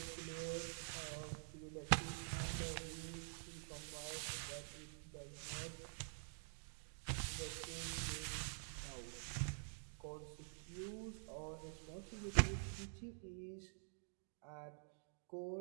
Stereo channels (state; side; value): silent; left; digital silence